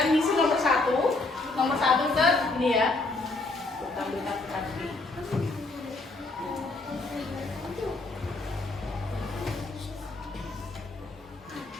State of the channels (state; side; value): quieter; right; 3.2 dB